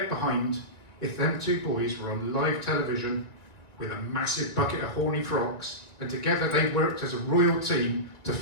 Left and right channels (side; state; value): right; late; 2.1 ms